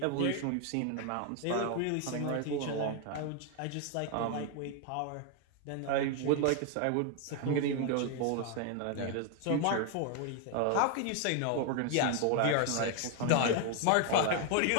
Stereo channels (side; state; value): both; different; correlation 0.01